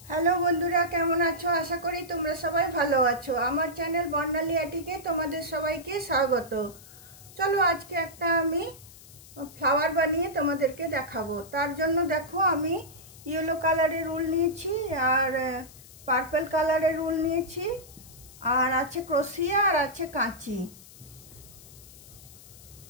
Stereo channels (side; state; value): left; noise; hiss, 20 dB below the sound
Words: Hello বন্ধুরা, কেমন আছো? আশা করি তোমরা সবাই ভালো আছো। আমার চ্যানেল বর্ণালী আটিকে তোমাদের সবাইকে স্বাগত। চলো আজকে একটা আমি ফ্লাওয়ার বানিয়ে তোমাদেরকে দেখাবো। তার জন্য দেখো আমি ইয়েলো কালারের উল নিয়েছি আর পার্পল কালারের উল নিয়েছি, আর আছে ক্রোশিয়া আর আছে কাঁচি।